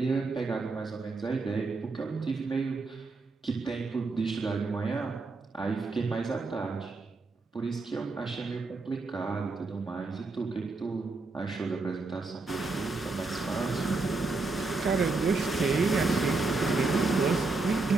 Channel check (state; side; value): quieter; left; 3.7 dB